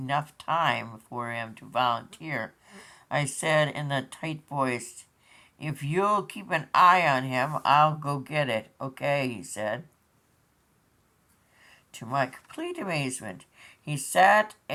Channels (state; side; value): identical; both; correlation 1.00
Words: time for him to volunteer, I said in a tight voice, "If you'll keep an eye on him, I'll go get it." "Okay," he said. To my complete amazement, he sat